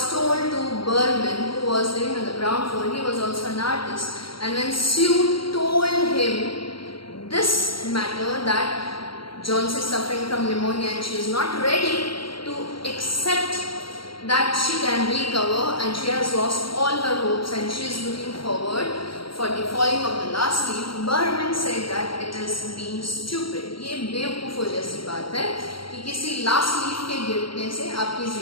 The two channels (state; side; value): late; right; 0.74 ms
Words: told to Berman, who was living on the ground floor, he was also an artist, and when Sue told him this matter that Johnsy is suffering from pneumonia and she is not ready to accept that she can recover and she has lost all her hopes and she is looking forward for the falling of the last leaf, Berman said that it is being stupid. ये बेवकूफ़ों जैसी बात है कि किसी last leaf के गिरने से आपकी